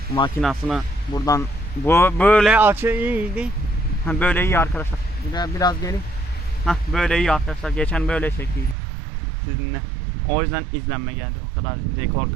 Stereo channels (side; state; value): left; drops out; at 8.8 s